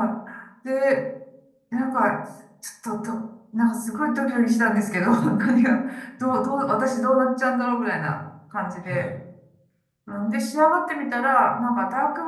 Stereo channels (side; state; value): both; identical; correlation 1.00